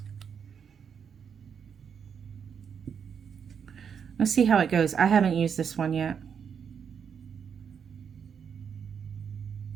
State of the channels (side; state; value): left; quieter; 7.2 dB